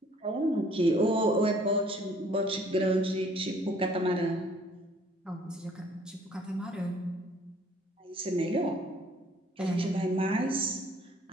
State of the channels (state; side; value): normal; both; correlation 0.58